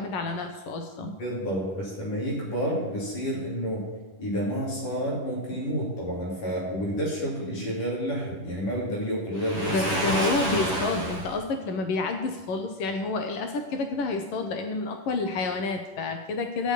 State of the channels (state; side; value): late; right; 10 ms